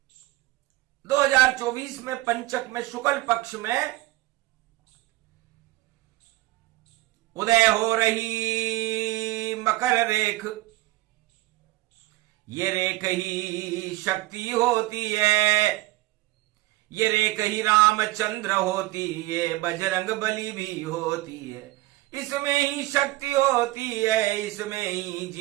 2024 में, पंचक में शुक्ल पक्ष में उदय हो रही मकर रेख, ये रेख ही शक्ति होती है, ये रेख ही रामचंद्र होती है, बजरंग बली भी होती है, इसमें ही शक्ति होती है, इसमें ही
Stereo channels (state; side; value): quieter; left; 18.6 dB